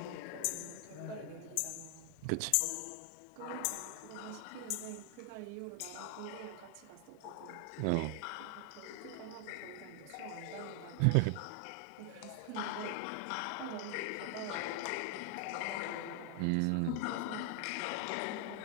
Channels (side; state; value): both; different; correlation 0.00